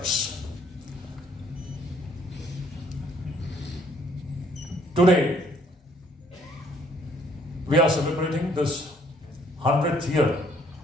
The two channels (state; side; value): normal; both; correlation 0.63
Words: Today, we are celebrating this 100th year